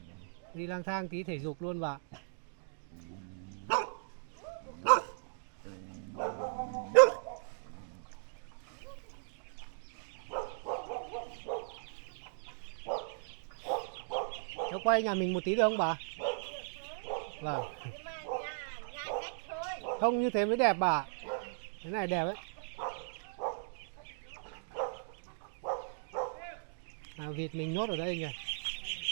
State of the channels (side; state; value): left; silent; digital silence